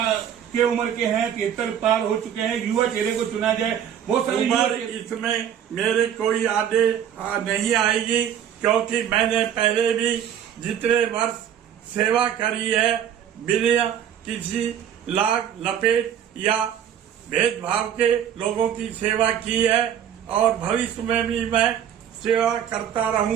के उम्र के हैं, 73 पार हो चुके हैं, युवा चेहरे को चुना जाए? बहुत सारे उम्र इसमें मेरे कोई आगे नहीं आएगी, क्योंकि मैंने पहले भी जितने वर्ष सेवा करी है बिना किसी लाग लपेट या भेदभाव के लोगों की सेवा की है और भविष्य में भी मैं सेवा करता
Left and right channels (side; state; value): left; quieter; 9.4 dB